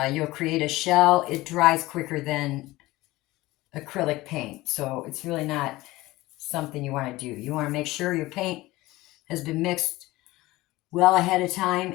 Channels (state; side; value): quieter; right; 18.9 dB